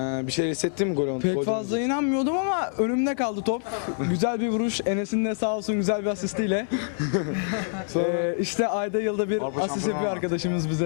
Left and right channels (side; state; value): right; silent; 56 dB below the other